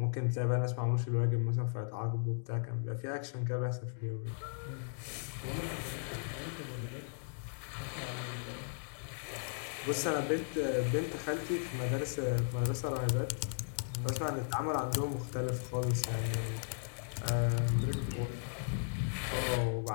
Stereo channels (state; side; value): silent; right; digital silence